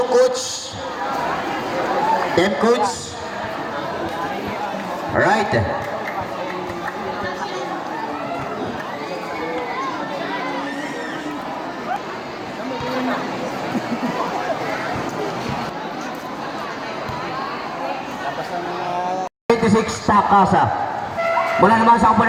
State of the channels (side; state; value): both; identical; correlation 1.00